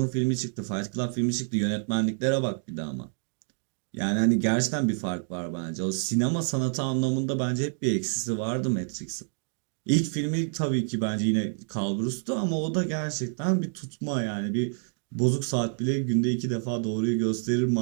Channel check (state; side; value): silent; left; digital silence